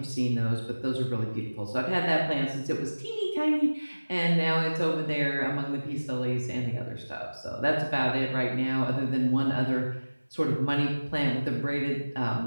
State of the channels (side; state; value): both; inverted; correlation -1.00